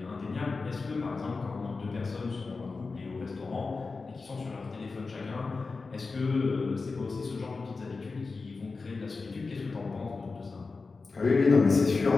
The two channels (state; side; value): quieter; right; 4.2 dB